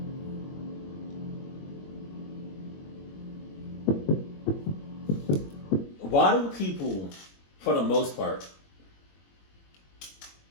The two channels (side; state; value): right; late; 21 ms